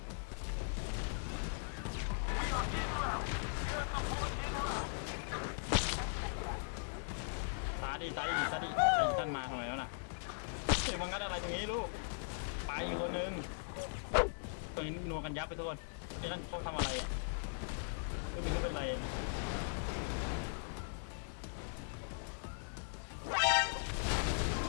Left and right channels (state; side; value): silent; right; digital silence